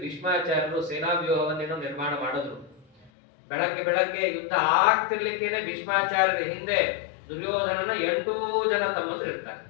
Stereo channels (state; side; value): drops out; right; at 3.1 s